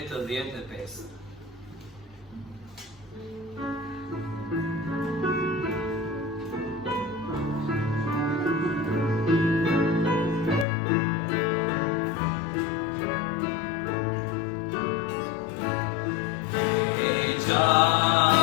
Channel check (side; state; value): right; drops out; at 10.7 s